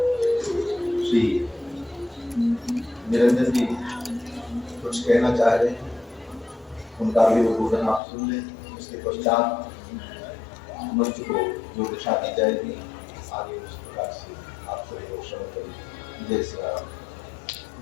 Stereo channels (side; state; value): right; drops out; at 8.0 s